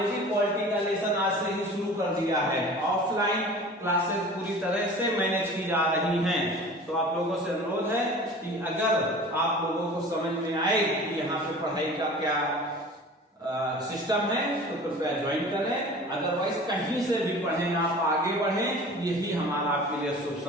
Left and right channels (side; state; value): both; normal; correlation 0.41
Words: पॉलिटी का लेसन आज से ही शुरू कर दिया है। ऑफलाइन क्लासेस पूरी तरह से मैनेज की जा रही हैं। तो आप लोगों से अनुरोध है कि अगर आप लोगों को समझ में आए कि यहाँ पे पढ़ाई का क्या सिस्टम है तो कृपया ज्वाइन करें। अदरवाइज कहीं से भी पढ़ें, आप आगे बढ़ें, यही हमारा आपके लिए शुभ